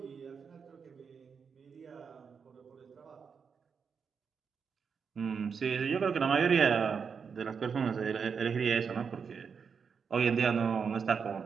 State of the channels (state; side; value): quieter; left; 6.1 dB